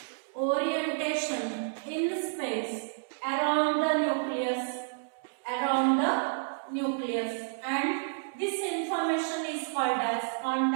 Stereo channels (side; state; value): left; silent; digital silence